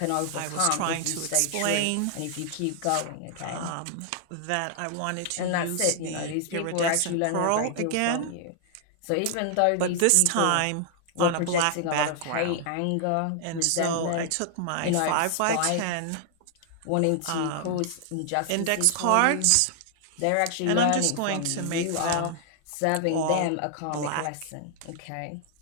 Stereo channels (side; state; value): both; different; correlation 0.00